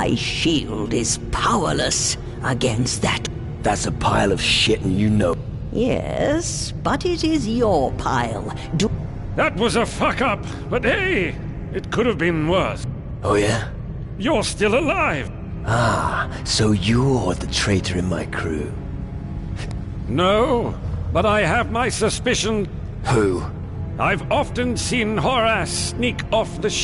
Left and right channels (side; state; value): both; identical; correlation 1.00